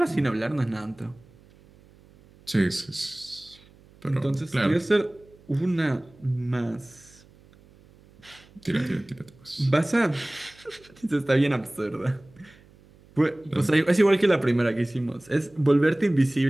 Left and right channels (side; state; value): right; noise; hum, 27 dB below the sound